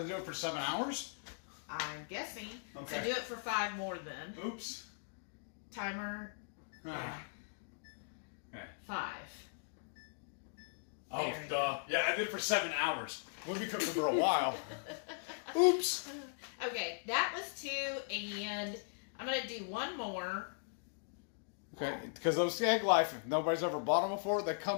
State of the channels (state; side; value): silent; right; digital silence